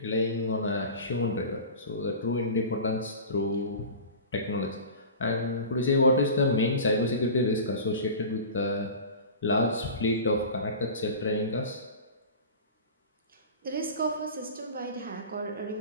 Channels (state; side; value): inverted; both; correlation -0.34